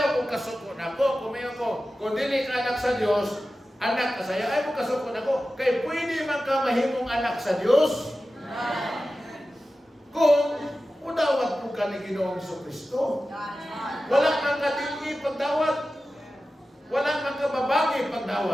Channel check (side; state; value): both; normal; correlation 0.94